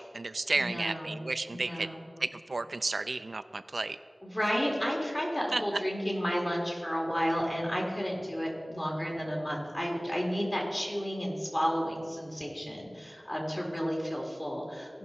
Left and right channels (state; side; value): normal; both; correlation 0.98